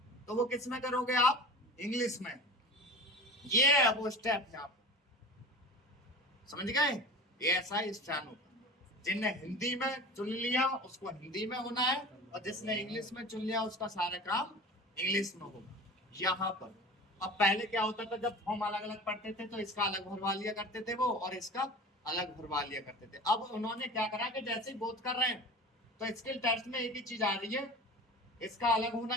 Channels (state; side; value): normal; both; correlation 0.36